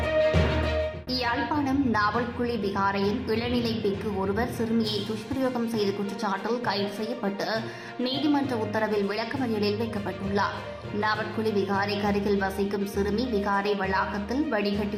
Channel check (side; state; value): both; identical; correlation 1.00